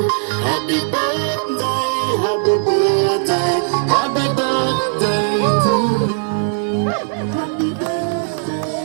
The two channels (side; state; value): left; silent; digital silence